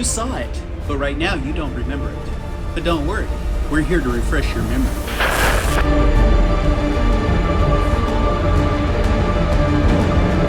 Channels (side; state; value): both; identical; correlation 1.00